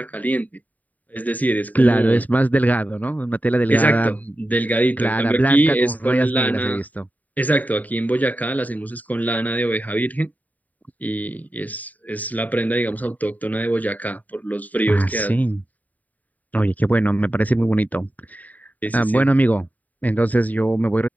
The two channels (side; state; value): right; late; 0.076 ms